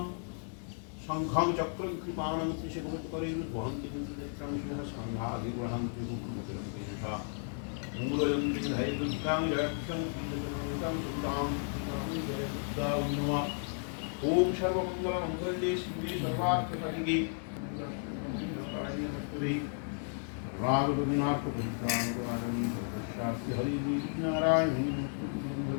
শঙ্খং চক্রং কৃপাণং ত্রিশকপটকরৈর্বহন্তি নেত্রং সিংহ স্কন্ধাভির্বহন্তি মুকুরমতিরন্তিষা মূলয়ন্তি ধৈ দুর্গাং জয়ক্ষং শ্রীজগন্নাথং সুদাং জয় দুর্গা নমঃ। ওম সর্বমঙ্গলমঙ্গলে শিবে সর্বার্থসাধিকে রাগরবীনাথপুত্রাণী সর্বস্যাস্তি হরিদেবী নারায়ণী নমঃ।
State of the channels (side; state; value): right; silent; 55 dB below the other